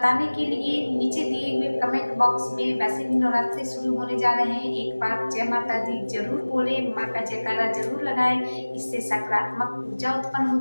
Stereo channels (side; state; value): both; inverted; correlation -1.00